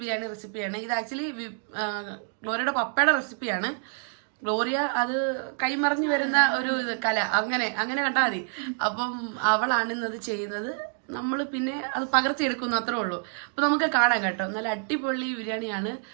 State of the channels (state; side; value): silent; left; 56 dB below the other